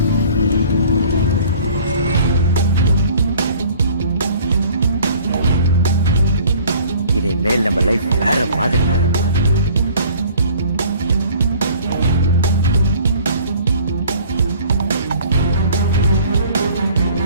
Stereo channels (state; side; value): inverted; both; correlation -0.51